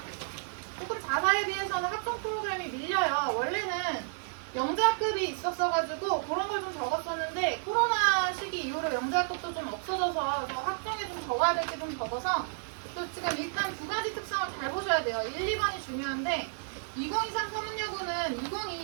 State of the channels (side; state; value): left; silent; 57 dB below the other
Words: 조금 자사에 비해서는 학종 프로그램이 밀려요. 원래는 영재학급이 있었어가지고 그런 걸 좀 적었었는데 코로나 시기 이후로 영재학급도 좀 없어져서 학종에 좀 적어야 될 게 좀 적어서 또 지금 일단 두 가지 특성을 잘 보셔야 돼요. 1, 2번이 중요한데 2023 서문여고는